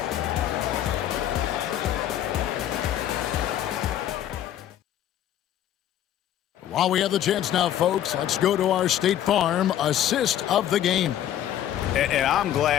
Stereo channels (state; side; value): quieter; right; 11.4 dB